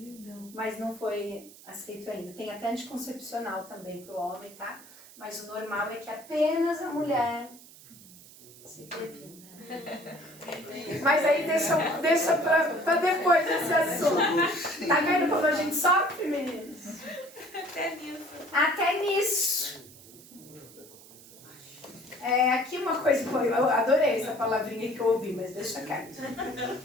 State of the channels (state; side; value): noise; right; hiss, 21 dB below the sound